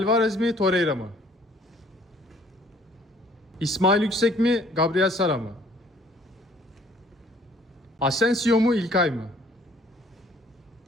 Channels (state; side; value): normal; both; correlation 0.59